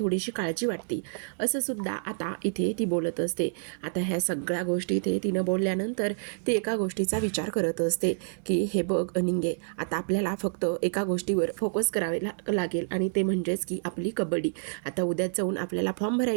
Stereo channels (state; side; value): silent; left; digital silence